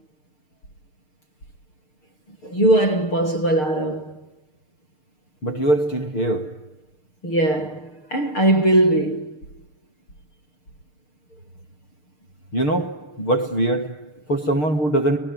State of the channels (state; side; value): late; right; 6.6 ms